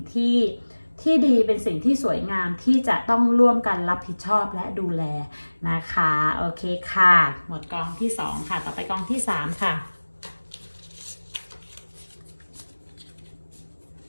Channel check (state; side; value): inverted; both; correlation -1.00